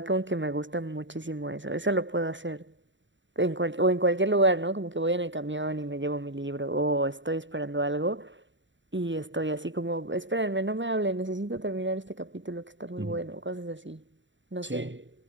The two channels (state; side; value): late; left; 0.54 ms